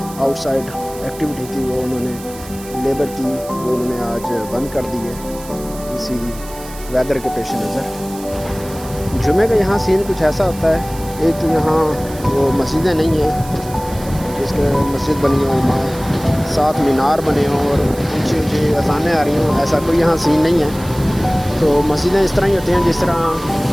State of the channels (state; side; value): noise; right; hiss, 17 dB below the sound